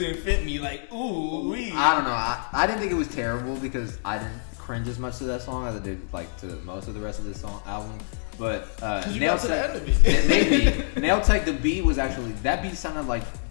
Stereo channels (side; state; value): right; silent; digital silence